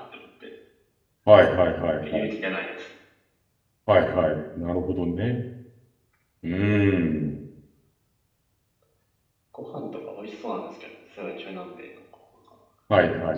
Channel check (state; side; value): identical; both; correlation 1.00